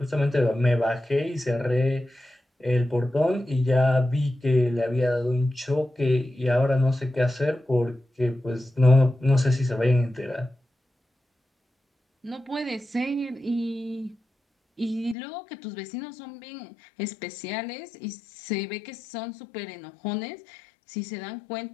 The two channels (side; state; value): right; drops out; at 15.2 s